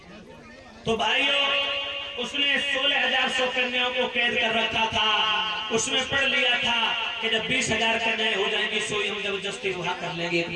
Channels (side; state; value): both; identical; correlation 1.00